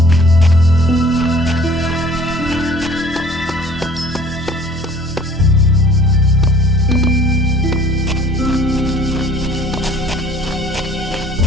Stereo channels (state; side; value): normal; both; correlation 0.53